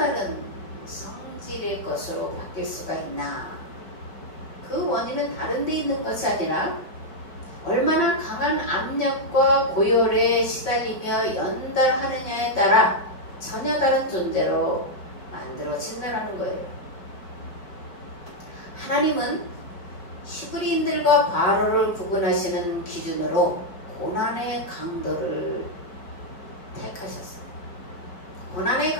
성질의 것으로 바뀔 수가 있나? 그 원인은 다른 데 있는 것이 아니라 얼마나 강한 압력과 고열에 시달리며 연달하느냐에 따라 전혀 다른 존재로 만들어진다는 거예요. 하나님은 히브리인들과 바로를 구분하시는 기준으로 고난의 강도를 택하셨습니다. 고난의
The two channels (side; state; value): right; late; 5.3 ms